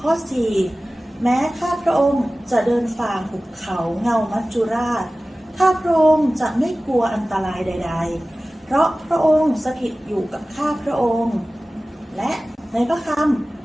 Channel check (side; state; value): both; normal; correlation 0.97